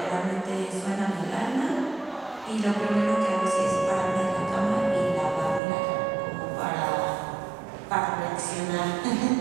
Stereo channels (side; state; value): left; drops out; at 5.6 s